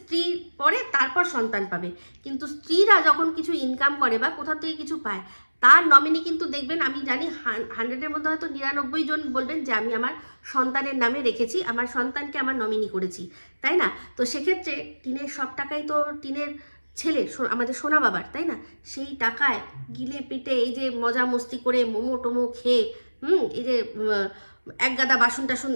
পরে তারপর সন্তান পাবে। কিন্তু স্ত্রীরা যখন কিছু ইনকাম করে বা কোথাও থেকে কিছু পায়, তার নমিনি কিন্তু দেখবেন, আমি জানি 100-এর মধ্যে হয়তো 99 জন বলবেন যে আমি আমার সন্তানের নামে রেখেছি, আমার সন্তানকে আমার নমিনি করেছি, তাই না? তো সেক্ষেত্রে টিনের সব টাকাই তো টিনের ছেলে আমাদের সোনা বাবার, তাই না? সেই টাকায় গিলে পিটে এই যে মজা মস্তি করে মোমো টোমো খেয়ে এই যে এক গাদা বাসন টাসন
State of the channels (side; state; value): both; inverted; correlation -1.00